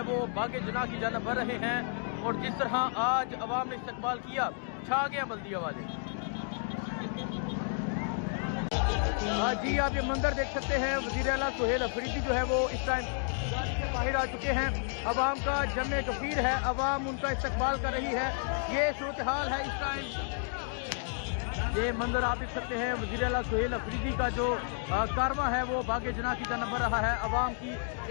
वो बागे जना की जानब बढ़ रहे हैं, और जिस तरह आज अवाम ने इस्तकबाल किया, छा गया बल्दिया वाले। जी आप ये मंदिर देख सकते हैं, वज़ीर आला सुहेल अफरीदी जो है वो इस टाइम बाहर आ चुके हैं। अवाम का जमे गफीर है, अवाम उनका इस्तकबाल कर रही है। ये सूरत हाल है इस टाइम। ये मंदिर आप देख सकते हैं, वज़ीर आला सुहेल अफरीदी का जो कारवां है वो बागे जना की जानब बढ़ रहा है। अवाम की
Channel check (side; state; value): right; silent; 57 dB below the other